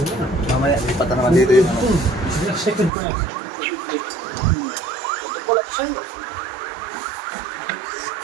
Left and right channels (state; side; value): drops out; left; at 2.9 s